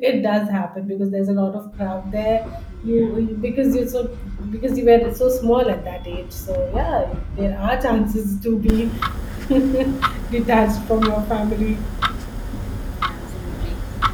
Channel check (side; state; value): both; identical; correlation 1.00